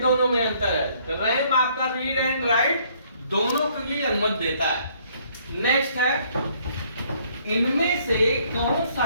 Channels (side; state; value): both; inverted; correlation -0.64